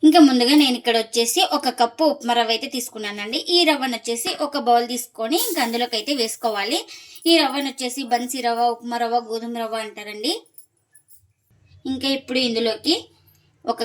ఇంకా ముందుగా నేను ఇక్కడ వచ్చేసి 1 కప్పు ఉప్మా రవ్వ అయితే తీసుకున్నానండి. ఈ రవ్వను వచ్చేసి ఒక బౌల్ తీసుకొని ఇంకా అందులోకి అయితే వేసుకోవాలి. ఈ రవ్వను వచ్చేసి బన్సీ రవ్వ, ఉప్మా రవ్వ, గోధుమ రవ్వ అంటారండి. ఇంకా ఇప్పుడు ఇందులోకి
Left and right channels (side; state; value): both; identical; correlation 1.00